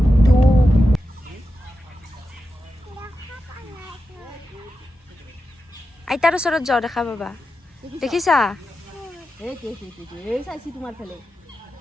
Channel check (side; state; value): both; normal; correlation 0.90